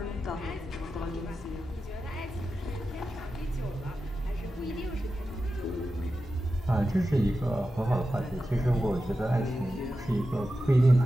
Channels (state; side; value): normal; both; correlation 0.91